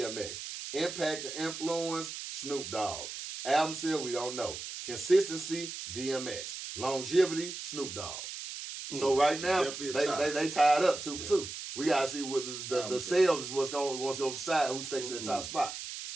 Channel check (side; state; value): right; noise; hiss, 8 dB below the sound